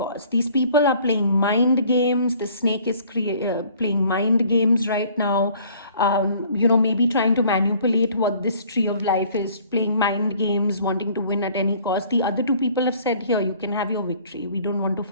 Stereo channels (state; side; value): inverted; both; correlation -0.55